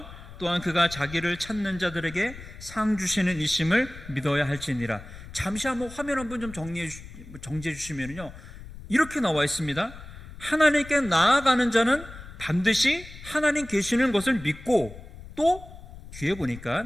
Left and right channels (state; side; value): noise; left; rumble, 15 dB below the sound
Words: 또한 그가 자기를 찾는 자들에게 상 주시는 이심을 믿어야 할지니라. 잠시 한번 화면 한번 좀 정지해 주시면요, 이렇게 나와 있습니다. 하나님께 나아가는 자는 반드시 하나님 계시는 것을 믿고, 또 뒤에 보니까